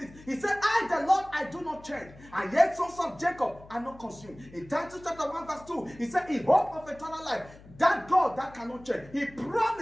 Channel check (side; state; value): left; noise; hum, 21 dB below the sound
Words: He said, I, the Lord, I do not change, and yet sons of Jacob are not consumed. In Titus chapter 1 verse 2, He said, in hope of eternal life, that God that cannot change, He